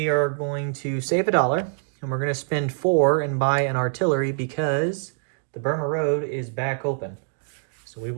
are going to save $1 and we're going to spend 4 and buy an artillery because the Burma Road is back open. So we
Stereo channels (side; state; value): left; silent; digital silence